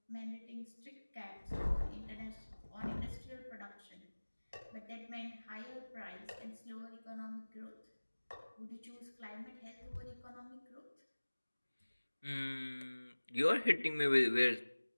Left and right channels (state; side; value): inverted; both; correlation -1.00